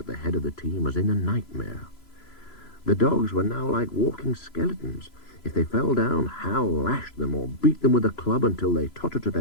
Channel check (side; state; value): right; late; 3.0 ms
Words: the head of the team as in a nightmare. The dogs were now like walking skeletons. If they fell down, Hal lashed them or beat them with a club until they tottered to